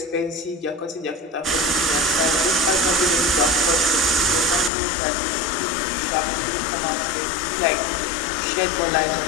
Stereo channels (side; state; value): right; drops out; at 4.7 s